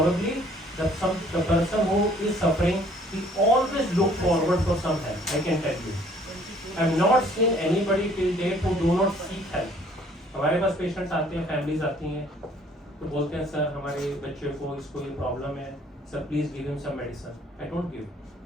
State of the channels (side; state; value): both; normal; correlation 0.58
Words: the person who is suffering, he always look forward for some help. I can tell you. I have not seen anybody till date who do not seek help. हमारे पास patients आते हैं, families आती हैं, तो बोलते हैं sir हमारे बच्चे को इसको ये प्रॉब्लम है, sir please give him some medicine. I don't give.